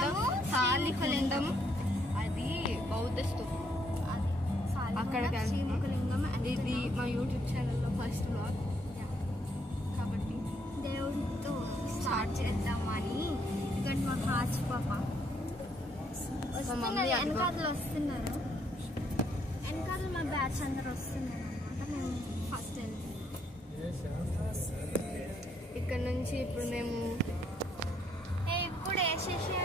అది బౌద్ధ స్తూపం. అక్కడికి శ్రీముఖలింగం. ఇది మా యూట్యూబ్ ఛానల్లో ఫస్ట్ వ్లాగ్ కాబట్టి దేవుడితో స్టార్ట్ చేద్దామని. ఇక్కడ మా కాచి పాప వెనకాతలు వస్తున్నారు, వెనకాతలు మా బ్యాచ్ అందరు వస్తున్నారు అనమాట. మేము ఫస్ట్ వెళ్తున్నాం. ఇక్కడ నుంచి ఇప్పుడు మేము ఇప్పుడు వేసేసి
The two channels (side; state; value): both; normal; correlation 0.72